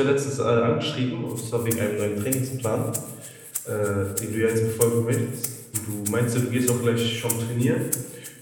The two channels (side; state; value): both; identical; correlation 1.00